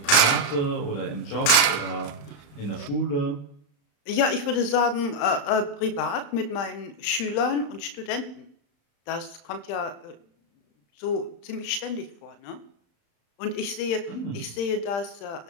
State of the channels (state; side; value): late; right; 35 ms